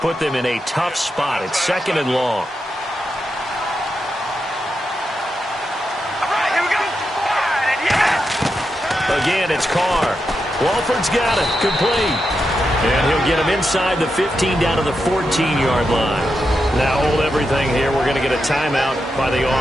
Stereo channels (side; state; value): both; normal; correlation 0.87